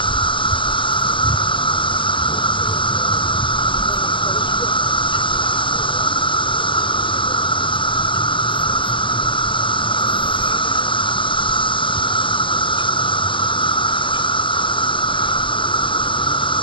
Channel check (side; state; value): right; late; 0.24 ms